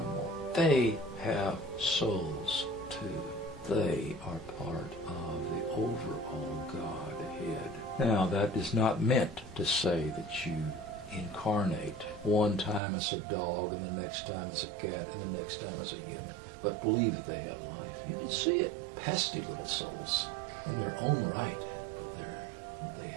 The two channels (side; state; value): left; drops out; at 12.8 s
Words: They have souls too. They are part of the overall Godhead. Now, that is not meant to say that you incarnate. One time as a dog, and the next time as a cat, and the next time as a human. But believe that they have life. You can see it. Pesky little souls in their own right, but they